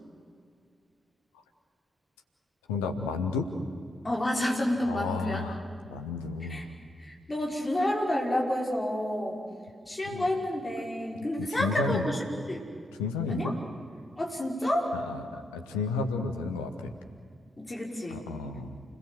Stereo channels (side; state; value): both; normal; correlation 0.80